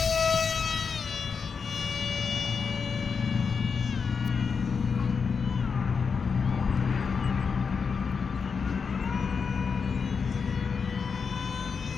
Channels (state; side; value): quieter; right; 5.6 dB